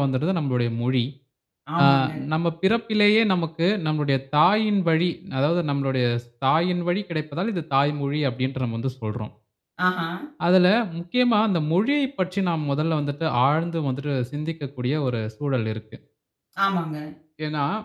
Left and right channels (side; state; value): both; identical; correlation 1.00